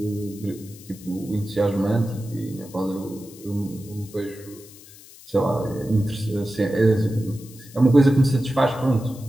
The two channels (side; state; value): left; noise; hiss, 20 dB below the sound